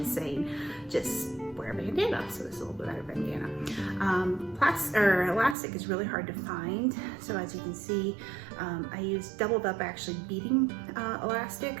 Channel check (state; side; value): drops out; left; at 5.6 s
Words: is saying just wear a bandana, so this is a little bit better bandana. Elastic is really hard to find, so as you can see, I used doubled up actually beading elastic